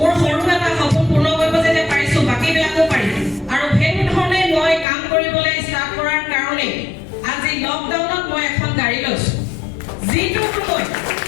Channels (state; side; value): drops out; right; at 4.9 s